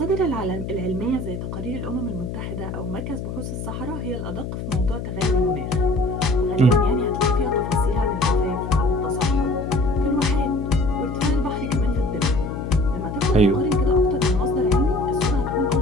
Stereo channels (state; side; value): noise; left; hum, 6 dB below the sound